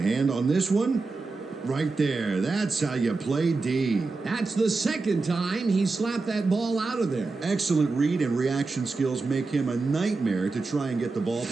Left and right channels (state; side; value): quieter; left; 3.8 dB